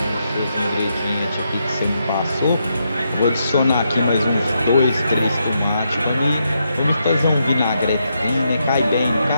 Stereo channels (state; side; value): inverted; both; correlation -0.81